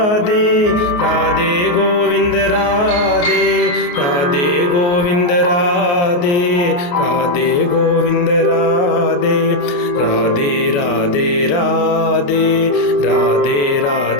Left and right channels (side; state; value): right; late; 29 ms